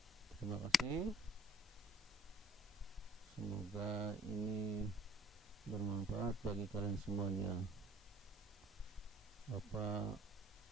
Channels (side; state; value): both; normal; correlation 0.55